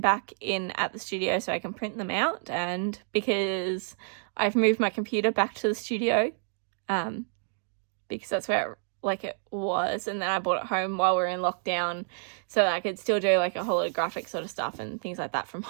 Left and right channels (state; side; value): silent; left; digital silence